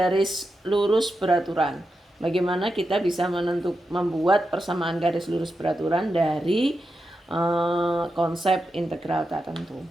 lurus beraturan. Bagaimana kita bisa membuat persamaan garis lurus beraturan dari konsep integral tak tentu.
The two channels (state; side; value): normal; both; correlation 0.88